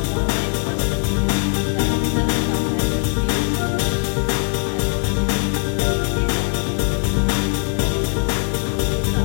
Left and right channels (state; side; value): quieter; right; 39.8 dB